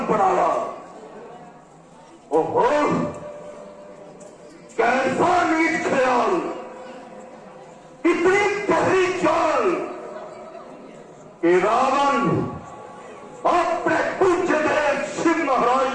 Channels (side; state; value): both; identical; correlation 1.00